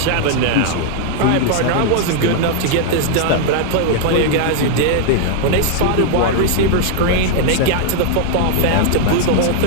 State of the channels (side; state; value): both; different; correlation 0.00